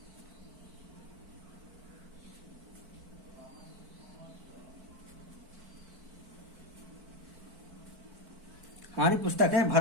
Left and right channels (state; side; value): late; left; 4.5 ms